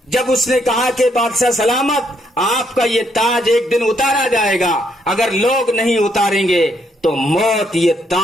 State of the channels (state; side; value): normal; both; correlation 0.73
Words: जब उसने कहा कि बादशाह सलामत, आपका ये ताज एक दिन उतारा जाएगा, अगर लोग नहीं उतारेंगे तो मौत ये